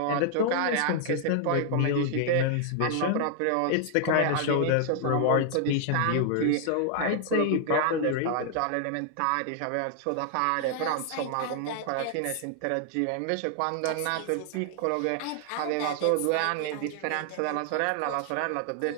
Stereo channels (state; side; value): different; both; correlation 0.00